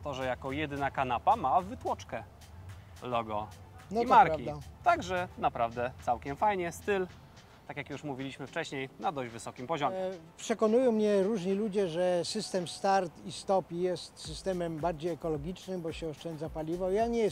że jako jedyna kanapa ma wytłoczkę logo No i to marki. prawda. Także naprawdę całkiem fajnie, styl, tak jak już mówiliśmy wcześniej, na dość wysokim poziomie. Przekonują mnie różni ludzie, że system start i stop jest systemem bardziej ekologicznym, bo się oszczędza paliwo. Ja nie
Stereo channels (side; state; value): both; identical; correlation 1.00